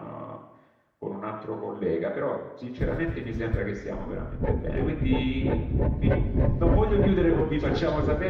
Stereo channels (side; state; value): both; identical; correlation 1.00